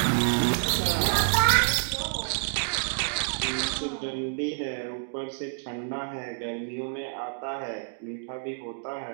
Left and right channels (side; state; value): left; silent; digital silence